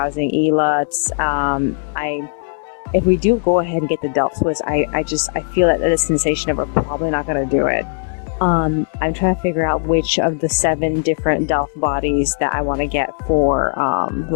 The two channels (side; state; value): right; silent; digital silence